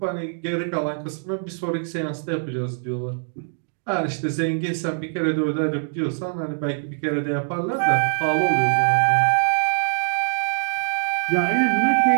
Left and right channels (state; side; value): silent; left; digital silence